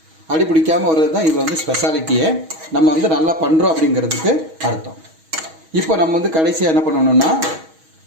அடி பிடிக்காமல் வர்றது தான் இது வந்து ஸ்பெஷாலிட்டியே. நம்ம வந்து நல்லா பண்ணுறோம் அப்படிங்கிறதுக்கு அர்த்தம். இப்போ நம்ம வந்து கடைசியாக என்ன பண்ணணும்னா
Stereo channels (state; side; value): late; left; 6.3 ms